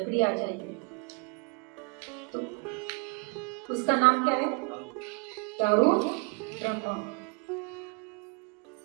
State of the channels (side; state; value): left; quieter; 32.1 dB